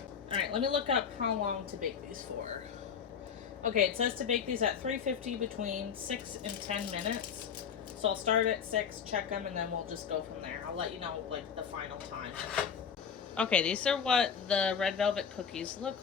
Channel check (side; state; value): right; quieter; 7.2 dB